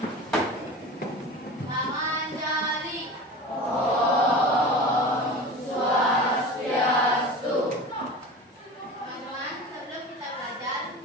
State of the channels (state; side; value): normal; both; correlation 0.34